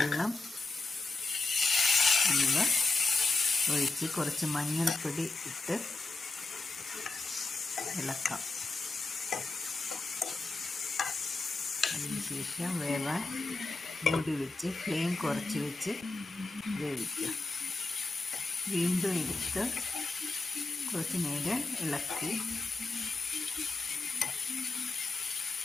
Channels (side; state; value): right; quieter; 3.4 dB